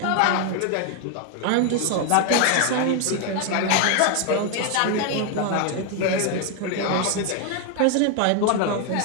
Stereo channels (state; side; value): different; both; correlation 0.01